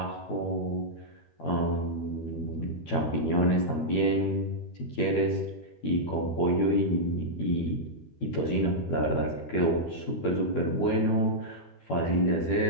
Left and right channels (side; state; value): right; late; 12 ms